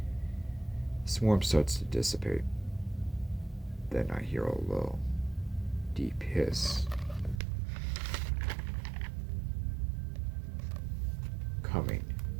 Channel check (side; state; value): left; drops out; at 7.4 s